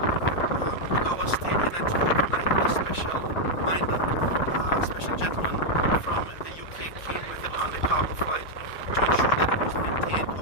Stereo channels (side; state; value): right; late; 4.9 ms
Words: Our state in Antigua tonight, a special minder, a special gentleman from the UK came with it on the cargo flight to ensure that it was maintained